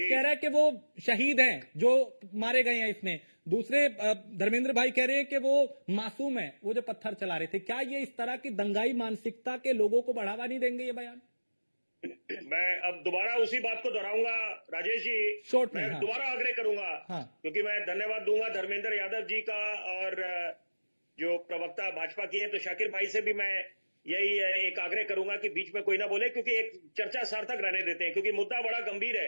रहा है कि वो शहीद हैं जो मारे गए हैं इसमें, दूसरे धर्मेंद्र भाई कह रहे हैं कि वो मासूम है, वो जो पत्थर चला रहे थे। क्या ये इस तरह की दंगाई मानसिकता के लोगों को बढ़ावा नहीं देंगे ये बयान? मैं अब दोबारा उसी बात को दोहराऊंगा राजेश जी, शॉर्ट में। मैं हाँ। दोबारा आग्रह करूंगा। हाँ। क्योंकि मैं धन्यवाद दूंगा धर्मेंद्र यादव जी का, और जो प्रवक्ता भाजपा की है, तो शाकिर भाई से भी मैं यही एक आग्रह करूंगा कि बीच में कोई ना बोले, क्योंकि एक चर्चा सार्थक रहने देते हैं, क्योंकि मुद्दा बड़ा गंभीर है।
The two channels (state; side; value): inverted; both; correlation -1.00